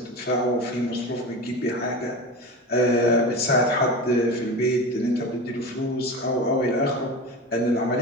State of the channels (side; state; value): both; normal; correlation 0.28